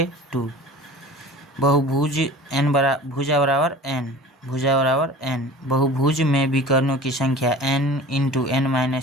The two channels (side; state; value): both; normal; correlation 0.40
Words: बहुभुज भुजा बराबर n। बहुभुज में विकर्णों की संख्या n ×